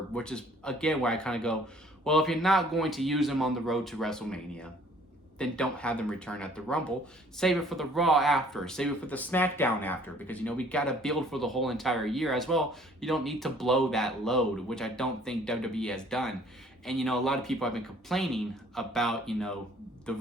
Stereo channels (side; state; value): both; normal; correlation 0.56